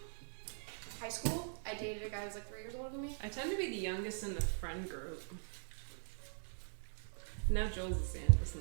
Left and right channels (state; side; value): silent; left; 50 dB below the other